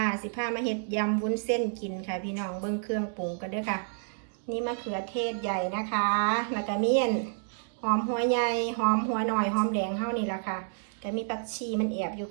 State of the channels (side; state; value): left; silent; digital silence